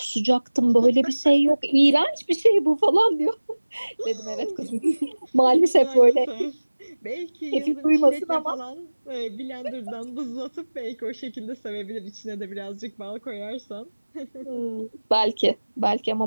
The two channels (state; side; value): inverted; both; correlation -1.00